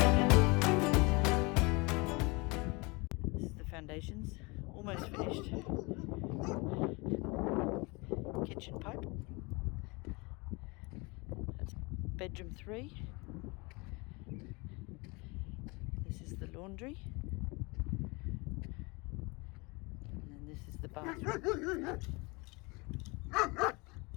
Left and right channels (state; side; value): quieter; right; 27.0 dB